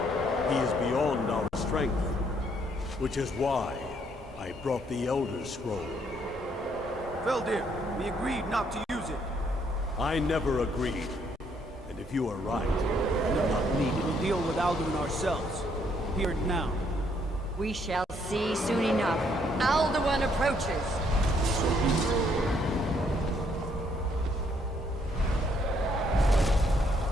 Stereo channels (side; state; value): both; normal; correlation 0.69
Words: He is beyond our strength. Which is why I brought the Elder Scroll. Veldir, we agreed not to use it. I never agreed. And if you are right, I do not need it. We'll deal with Alduin ourselves. Here and now. We shall see soon enough. Alduin approaches.